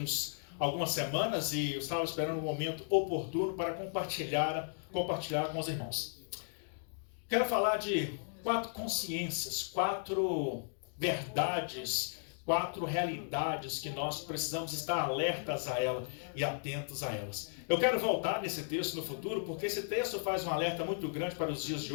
semanas e eu estava esperando um momento oportuno para compartilhar com os irmãos. Quero falar de 4 consciências, 4 verdades, 4 realidades que nós precisamos estar alertas a elas e atentos a elas. Eu quero voltar nesse texto no futuro, porque esse texto faz um alerta muito grande para os dias de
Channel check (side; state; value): right; silent; digital silence